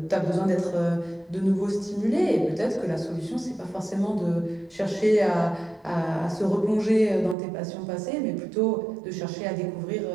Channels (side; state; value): left; drops out; at 7.4 s